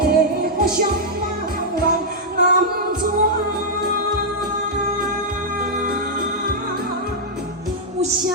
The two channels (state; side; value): normal; both; correlation -0.06